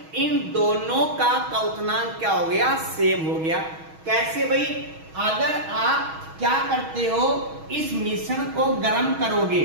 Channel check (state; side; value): late; left; 6.3 ms